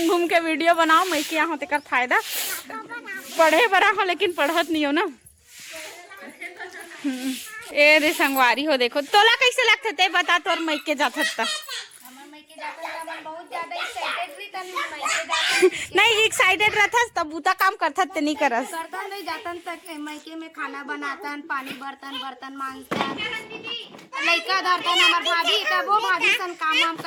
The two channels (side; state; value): both; identical; correlation 1.00